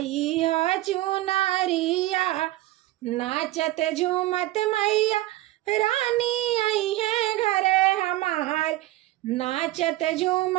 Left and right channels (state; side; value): quieter; left; 16.8 dB